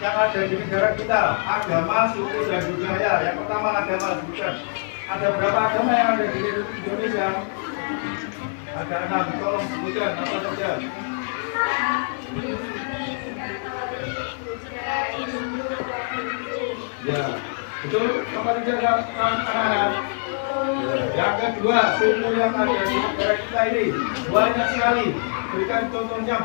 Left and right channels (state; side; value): silent; right; digital silence